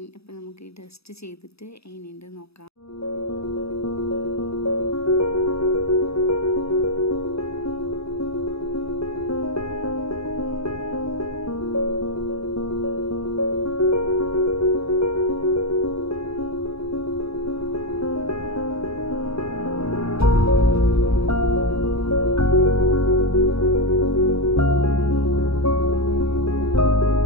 അപ്പോൾ നമുക്ക് ഈ ഡസ്റ്റ് ചെയ്തിട്ട് എങ്ങനെയുണ്ട് നോക്കാം.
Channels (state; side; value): late; right; 0.78 ms